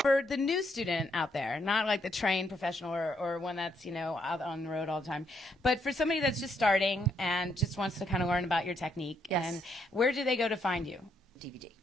For the new student out there, not the trained professional or one that's out on the road all the time, but for somebody that's just starting and just wants to kind of learn about your technique, and where do they go to find you? DVD.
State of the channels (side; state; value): both; normal; correlation 0.75